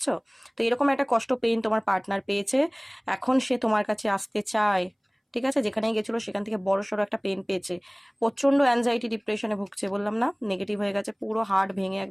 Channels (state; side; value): identical; both; correlation 1.00